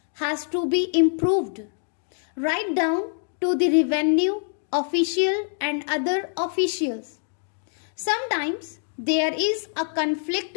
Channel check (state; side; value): silent; right; 62 dB below the other